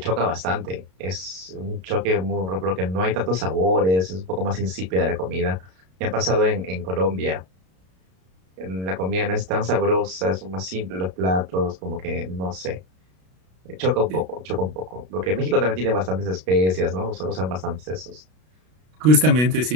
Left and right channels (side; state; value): left; late; 32 ms